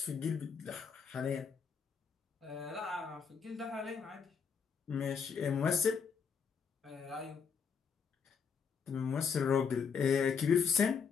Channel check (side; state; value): right; quieter; 6.3 dB